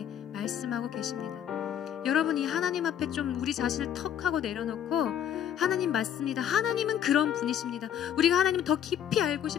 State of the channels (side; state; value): right; quieter; 9.7 dB